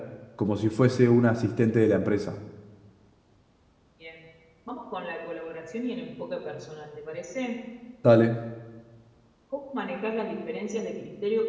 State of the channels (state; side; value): identical; both; correlation 1.00